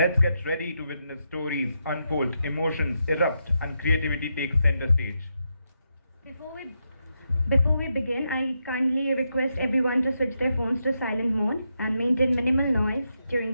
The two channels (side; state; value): both; inverted; correlation -0.84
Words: get ready to witness stories unfold, emotions erupt, and creativity takes center stage. Before we before we begin, I kindly request everyone to switch their phones to silent mode and maintain minimal noise during